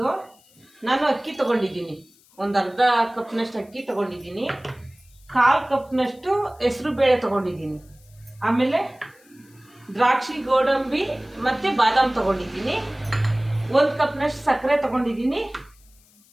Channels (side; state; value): left; noise; hiss, 30 dB below the sound